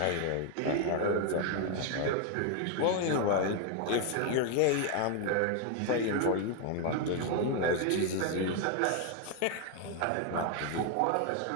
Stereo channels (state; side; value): different; both; correlation 0.01